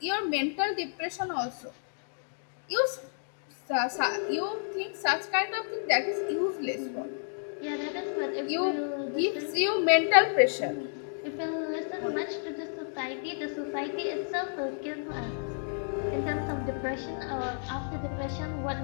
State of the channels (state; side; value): silent; right; digital silence